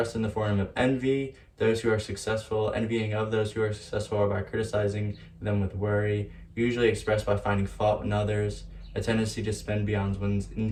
in the form of envy, those who are successful, envying of those who are successful, or by criticizing them with worry, usually expressed by finding fault in others, a tendency to spend beyond one's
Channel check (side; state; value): both; identical; correlation 1.00